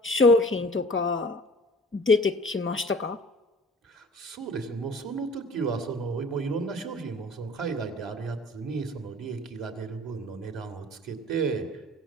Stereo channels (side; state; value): both; normal; correlation 0.46